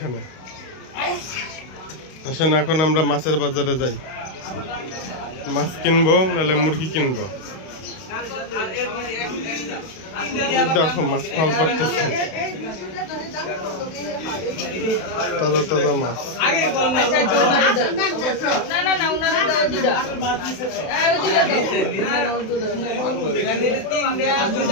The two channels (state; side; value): late; right; 32 ms